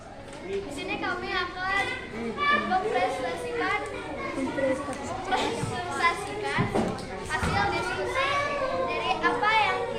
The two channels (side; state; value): both; identical; correlation 1.00